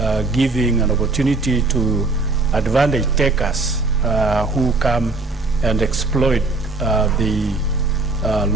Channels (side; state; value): left; quieter; 3.5 dB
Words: giving an opportunity to advantage takers who come and exploit the